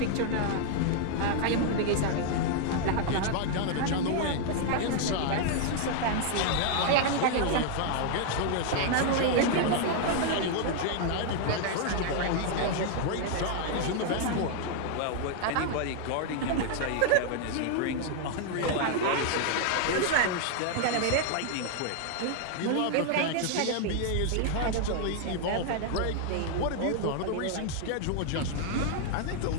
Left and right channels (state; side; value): different; both; correlation 0.00